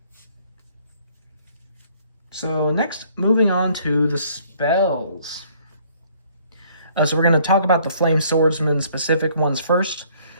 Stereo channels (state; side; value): inverted; both; correlation -0.61